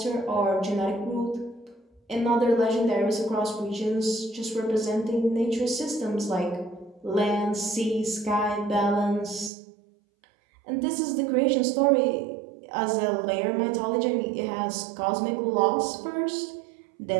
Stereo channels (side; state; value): left; drops out; at 9.5 s